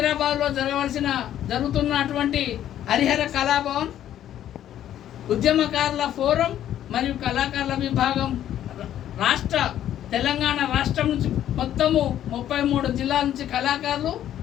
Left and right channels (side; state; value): right; quieter; 11.4 dB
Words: జరుగుతున్నటువంటి హరిహర కళాభవన్ ఉద్యమకారుల ఫోరం మరియు కళాకారుల విభాగం తెలంగాణ రాష్ట్రం నుంచి మొత్తము 33 జిల్లాల నుంచి కళాకారులు